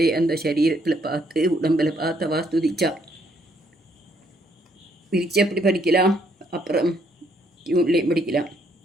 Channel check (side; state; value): both; normal; correlation 0.69